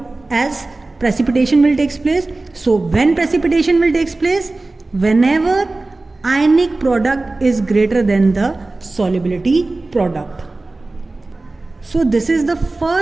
as precipitation will take place. So when precipitation will take place? Whenever ionic product is greater than the solubility product. So this is the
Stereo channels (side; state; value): left; quieter; 3.2 dB